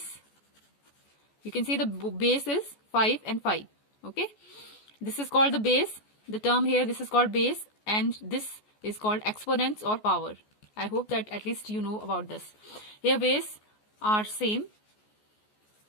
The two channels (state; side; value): late; right; 14 ms